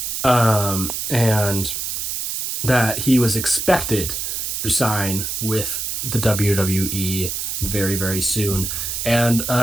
and that he was expected to sign with the WWE very, very soon. And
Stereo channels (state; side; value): noise; right; hiss, 3 dB below the sound